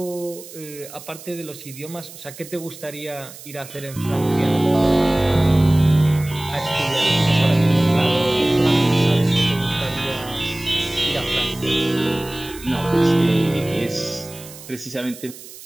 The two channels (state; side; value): noise; right; hiss, 16 dB below the sound